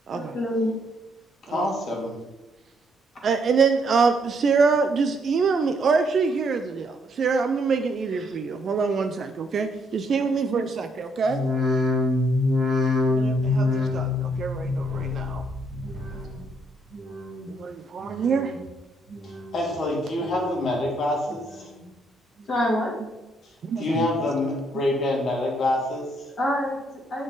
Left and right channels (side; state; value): both; normal; correlation 0.72